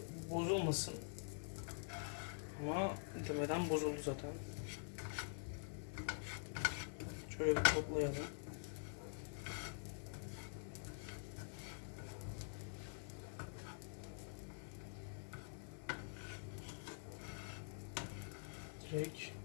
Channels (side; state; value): right; silent; digital silence